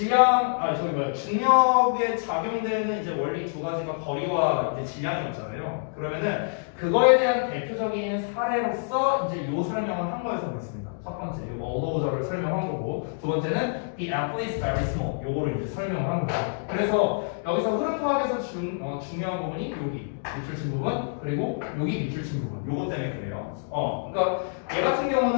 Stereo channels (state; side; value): silent; right; digital silence